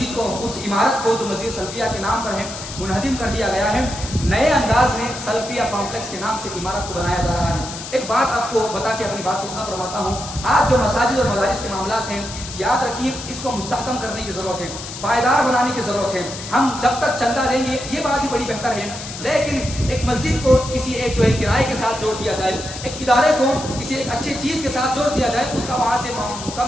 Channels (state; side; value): noise; left; hiss, 10 dB below the sound